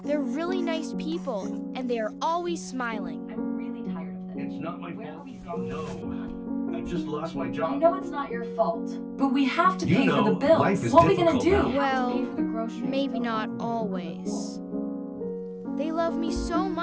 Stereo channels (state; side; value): identical; both; correlation 1.00